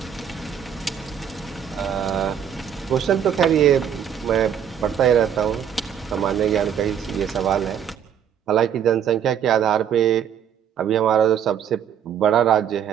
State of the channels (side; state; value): left; quieter; 8.7 dB